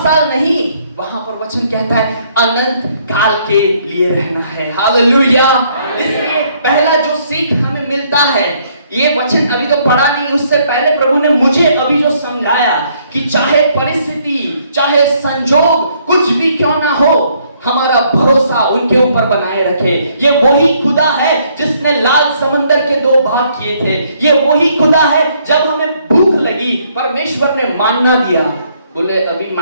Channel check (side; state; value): both; inverted; correlation -0.67